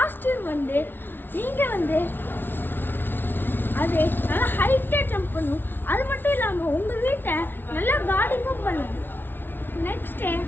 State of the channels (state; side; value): late; right; 0.10 ms